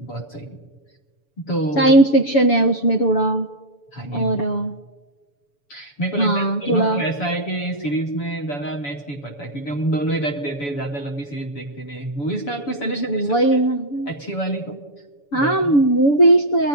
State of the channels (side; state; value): right; late; 7.0 ms